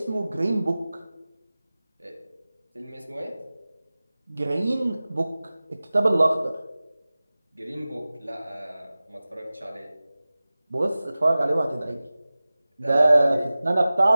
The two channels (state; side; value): inverted; both; correlation -0.97